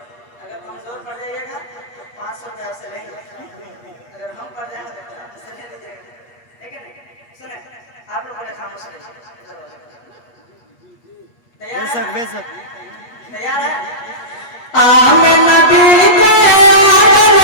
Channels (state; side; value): late; right; 8.4 ms